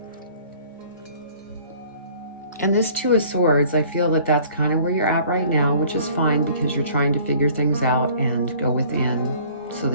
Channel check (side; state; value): both; inverted; correlation -0.53